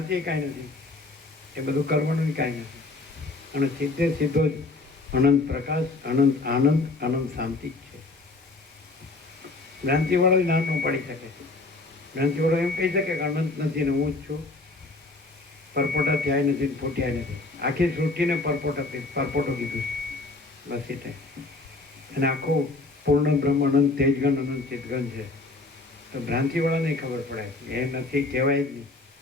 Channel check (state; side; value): quieter; right; 3.3 dB